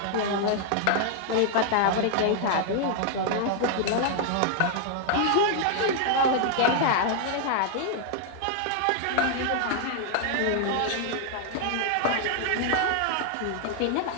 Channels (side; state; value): both; different; correlation 0.00